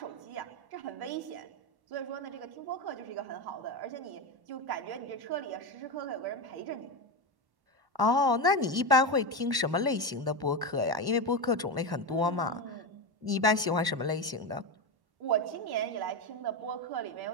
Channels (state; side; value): late; left; 1.1 ms